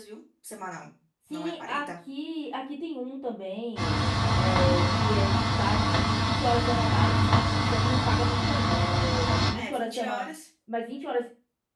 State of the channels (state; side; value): identical; both; correlation 1.00